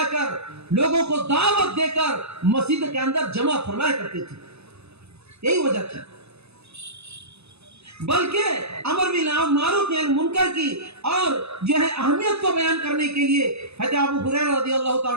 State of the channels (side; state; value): left; late; 0.79 ms